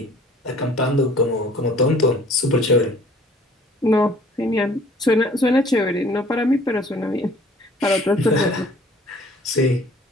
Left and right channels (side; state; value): both; normal; correlation 0.53